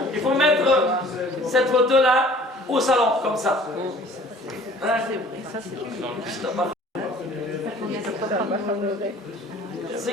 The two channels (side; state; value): both; normal; correlation 0.50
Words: Il faut mettre cette photo-là au salon, comme ça. Hein? C'est